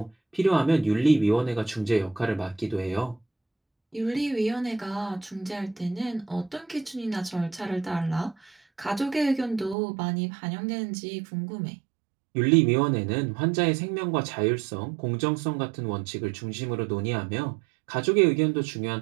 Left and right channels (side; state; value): left; drops out; at 9.8 s